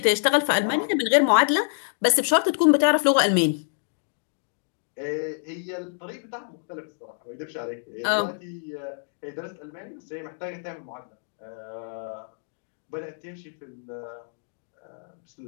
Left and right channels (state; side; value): silent; right; digital silence